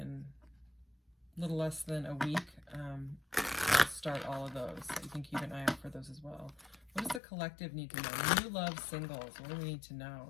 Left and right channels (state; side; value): drops out; right; at 7.2 s